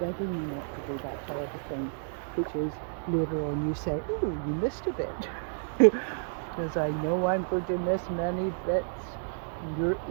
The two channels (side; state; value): left; silent; digital silence